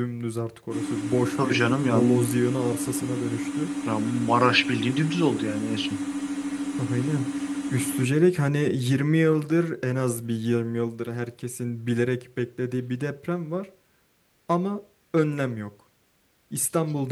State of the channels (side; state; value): both; identical; correlation 1.00